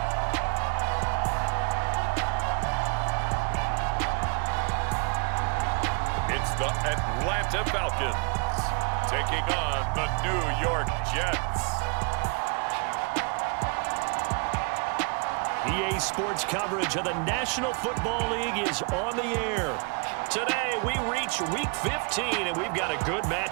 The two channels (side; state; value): left; quieter; 35.1 dB